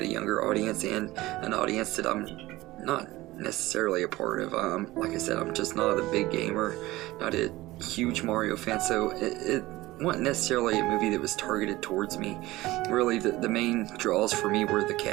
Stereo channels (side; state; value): left; quieter; 18.5 dB